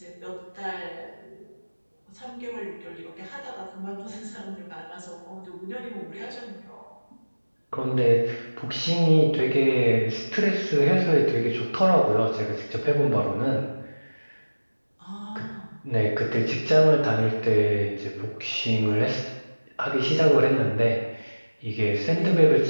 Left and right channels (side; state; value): both; inverted; correlation -1.00